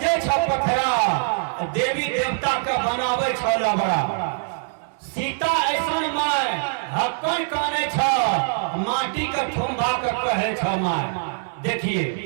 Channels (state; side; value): silent; left; digital silence